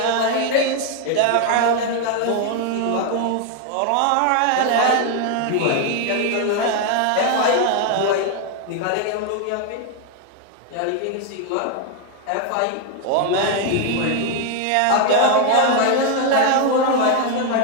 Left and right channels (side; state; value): both; different; correlation 0.00